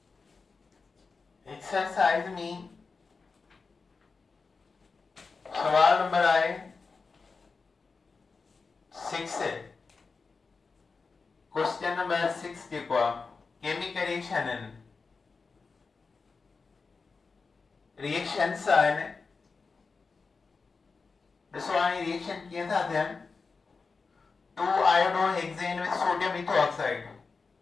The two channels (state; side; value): quieter; right; 4.5 dB